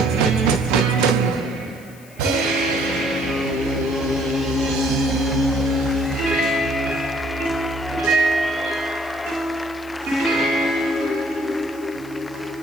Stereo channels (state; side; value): noise; left; hiss, 24 dB below the sound